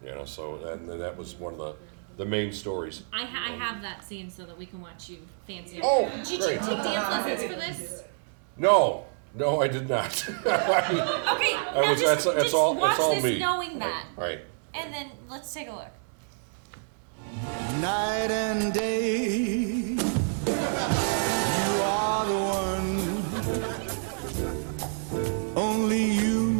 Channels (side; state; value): left; silent; digital silence